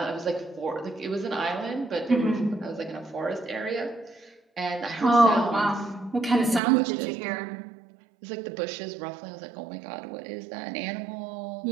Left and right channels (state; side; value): drops out; left; at 6.6 s